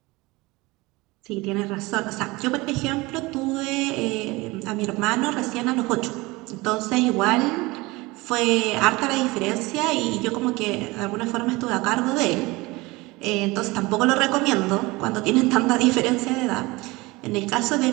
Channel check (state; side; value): quieter; left; 22.4 dB